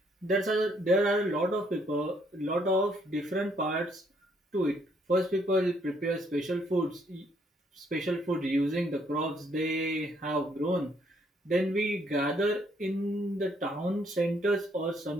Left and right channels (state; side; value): normal; both; correlation 0.69